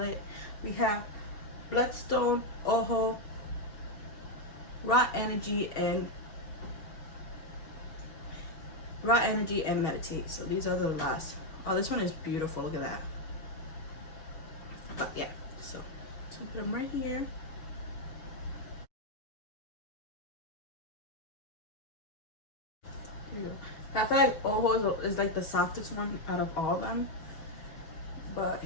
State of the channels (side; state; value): right; late; 6.3 ms